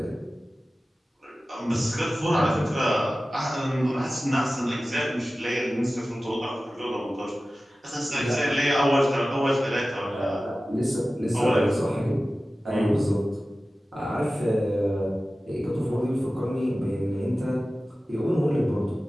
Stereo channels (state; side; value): normal; both; correlation 0.96